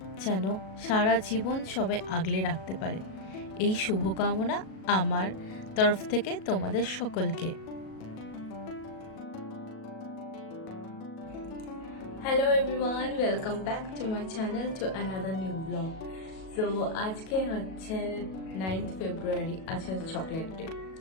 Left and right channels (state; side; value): late; right; 37 ms